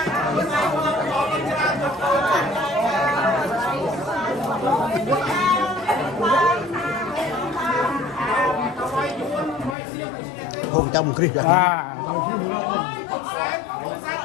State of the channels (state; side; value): drops out; right; at 9.8 s